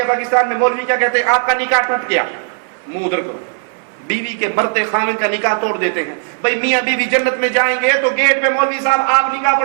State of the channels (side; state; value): left; silent; 57 dB below the other